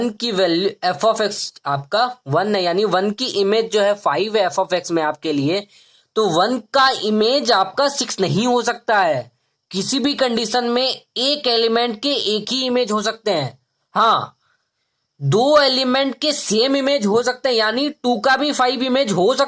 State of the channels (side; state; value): both; identical; correlation 1.00